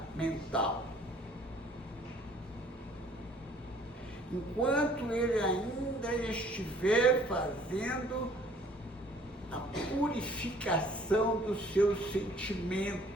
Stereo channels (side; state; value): both; normal; correlation 0.57